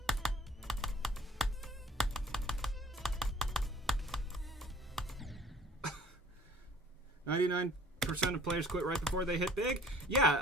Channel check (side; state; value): both; normal; correlation 0.52